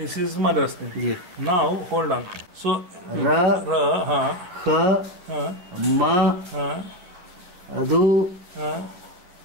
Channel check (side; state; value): left; late; 11 ms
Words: is mother's name. Yeah. Now hold on. So Ha Ma Adu